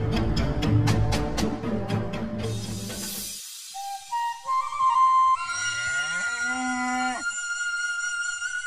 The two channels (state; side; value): identical; both; correlation 1.00